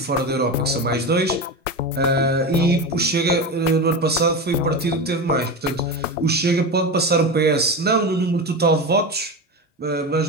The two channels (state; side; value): normal; both; correlation 0.22